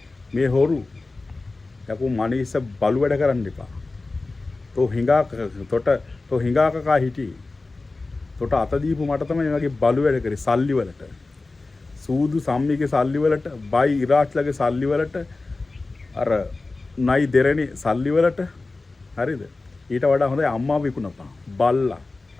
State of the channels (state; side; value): quieter; right; 3.4 dB